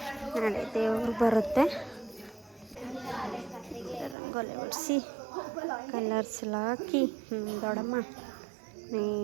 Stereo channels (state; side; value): drops out; left; at 4.2 s